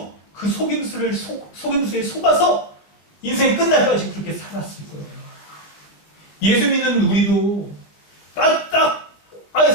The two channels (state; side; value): late; right; 19 ms